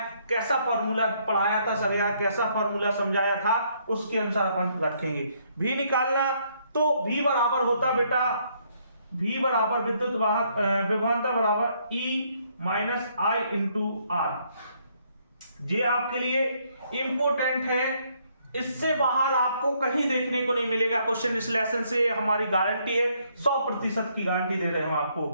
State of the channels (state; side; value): inverted; both; correlation -0.70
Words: कैसा फॉर्मूला पढ़ाया था सर या कैसा फॉर्मूला समझाया था, उसके अनुसार अपन रखेंगे। भी निकालना तो भी बराबर होता बेटा, भी बराबर विद्युत वाहक विभवांतर बराबर E minus I into R. ये आपके लिए इंपॉर्टेंट है, इससे बाहर आपको कहीं देखने को नहीं मिलेगा क्वेश्चन इस लेसन से, हमारी गारंटी है, 100% की गारंटी दे रहे हैं हम आपको।